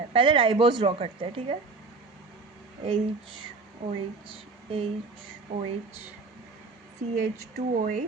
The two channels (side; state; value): left; quieter; 4.0 dB